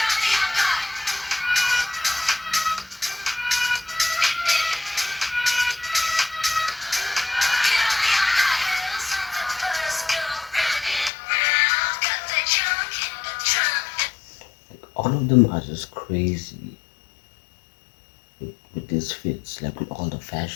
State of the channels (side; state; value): right; drops out; at 11.1 s